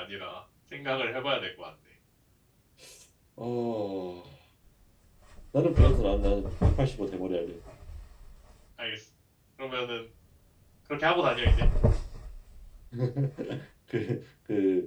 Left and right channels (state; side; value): identical; both; correlation 1.00